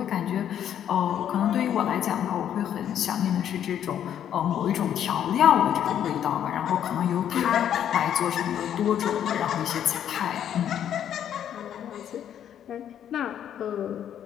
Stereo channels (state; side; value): quieter; right; 9.9 dB